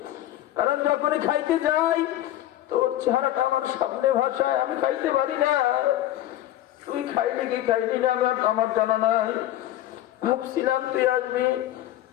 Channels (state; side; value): quieter; right; 13.6 dB